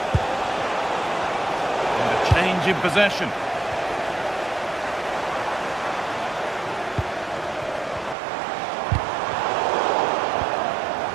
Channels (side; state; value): left; drops out; at 8.2 s